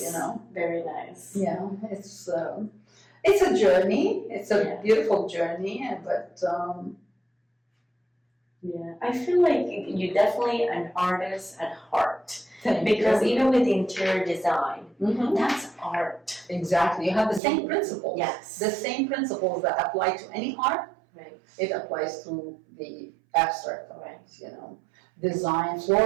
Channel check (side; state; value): left; drops out; at 17.4 s